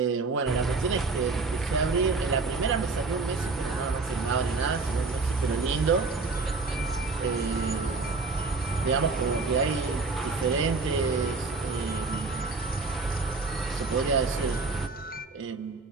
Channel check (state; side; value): quieter; left; 4.0 dB